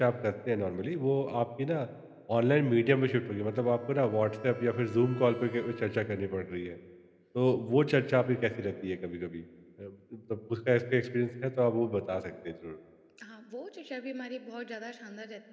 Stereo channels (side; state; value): both; identical; correlation 1.00